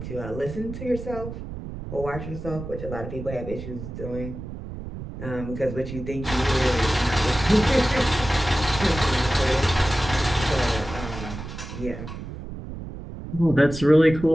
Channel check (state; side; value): noise; right; rumble, 10 dB below the sound